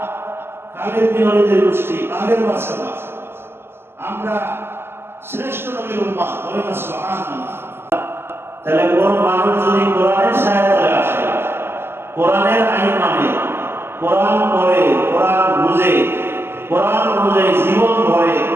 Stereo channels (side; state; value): left; late; 0.12 ms